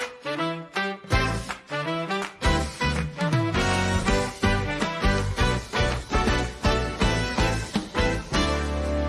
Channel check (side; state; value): both; identical; correlation 1.00